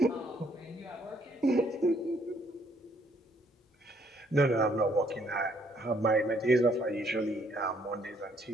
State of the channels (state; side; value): normal; both; correlation 0.68